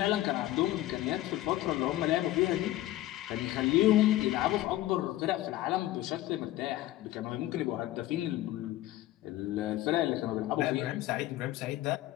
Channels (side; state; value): right; quieter; 15.3 dB